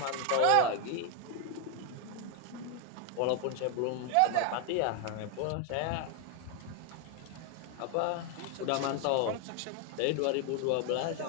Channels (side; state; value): both; different; correlation 0.01